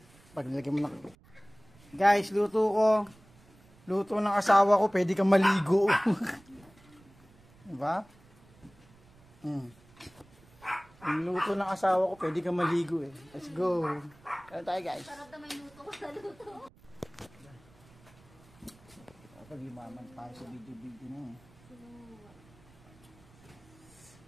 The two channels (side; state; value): right; noise; rumble, 26 dB below the sound